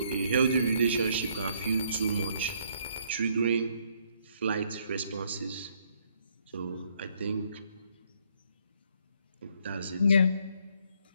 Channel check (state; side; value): inverted; both; correlation -0.68